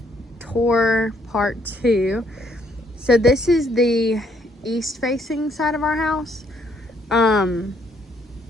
tour part 2. So this is the east facing side of our house. And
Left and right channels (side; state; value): both; normal; correlation 0.69